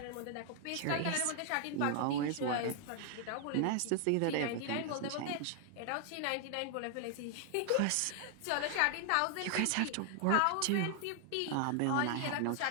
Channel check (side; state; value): both; different; correlation 0.00